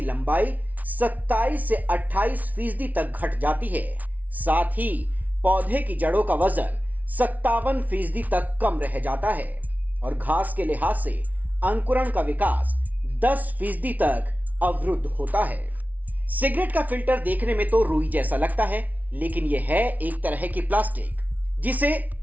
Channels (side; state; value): left; late; 0.074 ms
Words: लंबाई 27 से 28% तक घट जाती है। साथ ही पौधे की जड़ों का वजन 57% तक कम रह जाता है और घास के लिहाज से अंकुरण का विकास 10% तक अवरुद्ध होता है। सिगरेट का फिल्टर देखने में तो रुई जैसा लगता है, लेकिन यह है एक तरह की प्लास्टिक जिसे